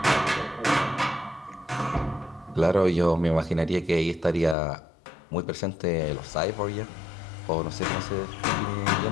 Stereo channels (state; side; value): drops out; right; at 4.5 s